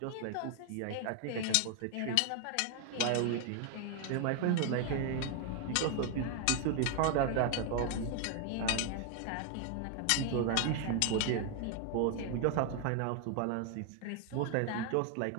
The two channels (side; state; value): both; different; correlation 0.00